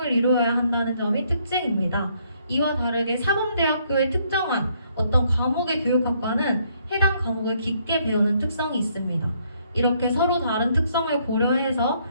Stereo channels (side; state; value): both; inverted; correlation -0.69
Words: 이루어야 한다는 점이 특징입니다. 이와 다르게 사범대학교의 특정한 어떤 과목의 교육학과는 해당 과목을 깊게 배우는 특성이 있습니다. 이렇게 서로 다른 특성을 고려해서